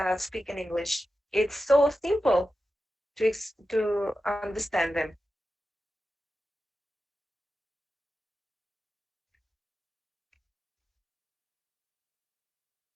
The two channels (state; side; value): normal; both; correlation 0.92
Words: speak in English, it's so simple to understand them.